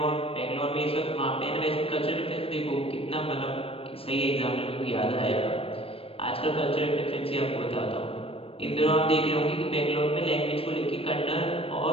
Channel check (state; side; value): late; right; 0.28 ms